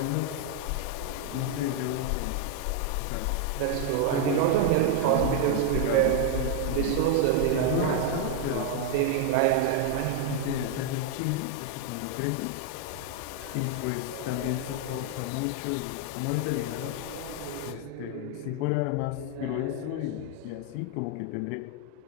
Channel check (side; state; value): both; different; correlation 0.00